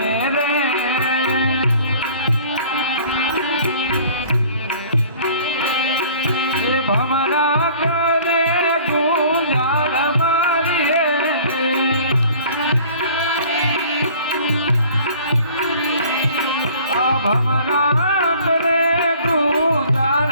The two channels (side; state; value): both; inverted; correlation -0.50